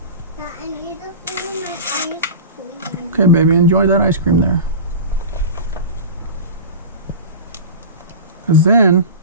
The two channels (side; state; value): both; inverted; correlation -0.31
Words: Okay, baby, enjoy that ice cream there. Because then,